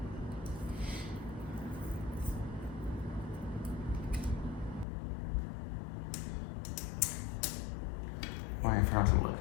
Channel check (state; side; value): drops out; right; at 4.9 s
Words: Why I forgot to look.